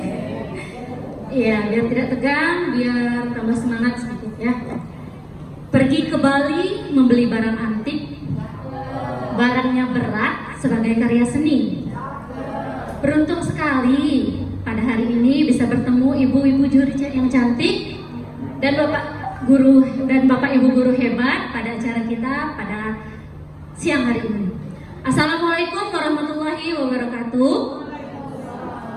Iya, biar tidak tegang, biar tambah semangat sedikit ya. Pergi ke Bali membeli barang antik, barangnya berat sebagai karya seni. Beruntung sekali pada hari ini bisa bertemu ibu-ibu juri yang cantik dan Bapak Ibu guru hebat pada acara kita pada siang hari ini. Assalamualaikum warahmatullahi wabarakatuh.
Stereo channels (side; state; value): both; identical; correlation 1.00